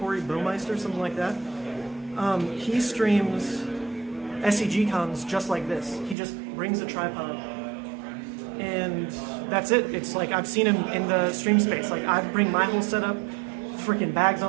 something like that. He streams SCG cons just like this. He just brings a tripod, and that's it. It's like I've seen him in the stream space. Like I bring my whole setup, freaking bags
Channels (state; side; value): drops out; left; at 6.2 s